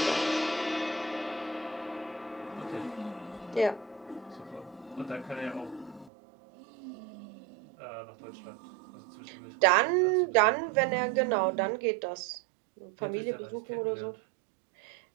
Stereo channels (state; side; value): drops out; left; at 6.1 s